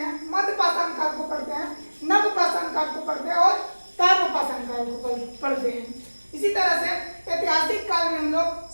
मध्यपाषाण काल को पढ़ते हैं, नवपाषाण काल को पढ़ते हैं और ताम्रपाषाण काल को पढ़ते हैं। इसी तरह से ऐतिहासिक काल में हम लोग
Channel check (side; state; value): both; inverted; correlation -1.00